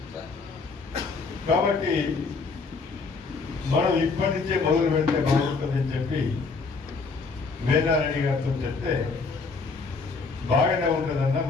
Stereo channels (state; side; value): quieter; right; 4.4 dB